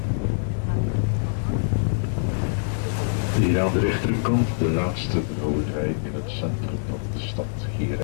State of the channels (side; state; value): right; silent; digital silence